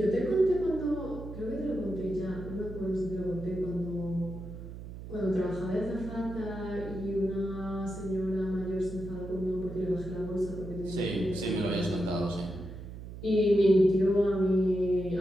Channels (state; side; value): noise; right; hum, 11 dB below the sound